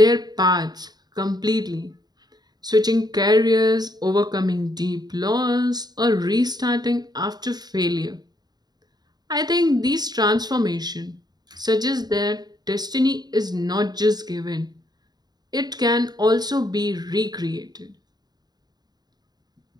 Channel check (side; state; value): left; late; 0.20 ms